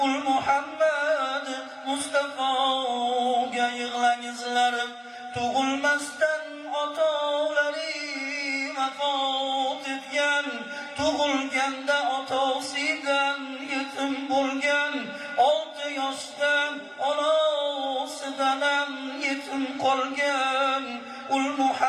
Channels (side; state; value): both; identical; correlation 1.00